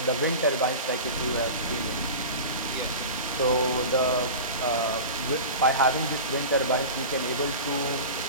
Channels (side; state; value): both; inverted; correlation -0.30